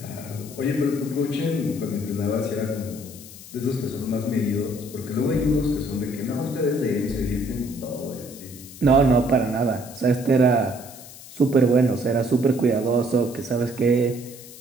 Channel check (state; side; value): noise; left; hiss, 17 dB below the sound